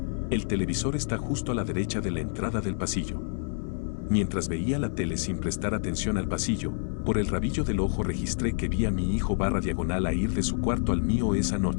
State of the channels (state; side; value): silent; right; 59 dB below the other